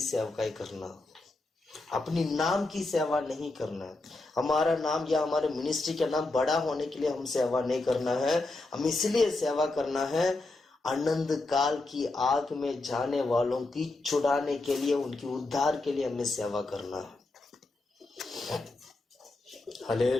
सेवकाई करना, अपनी नाम की सेवा नहीं करना है। हमारा नाम या हमारे मिनिस्ट्री का नाम बड़ा होने के लिए हम सेवा नहीं करना है, हम इसलिए सेवा करना है अनंत काल की आग में जाने वालों की छुड़ाने के लिए, उनकी उद्धार के लिए हमें सेवा करना है।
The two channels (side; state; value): right; quieter; 3.1 dB